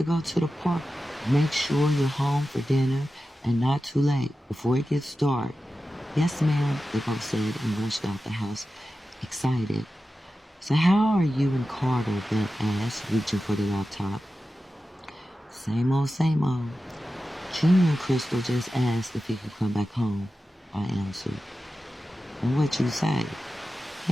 go to the park. Make sure you're home for dinner and not too late before it gets dark." "Yes, ma'am," they both said and rushed out the house, excited. "So how are you and Carter?" Beth asked, reaching for the laptop. Same old, same old. Junior and Crystal just asked if he could come back home," I answered. "And what you say?"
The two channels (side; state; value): both; normal; correlation 0.93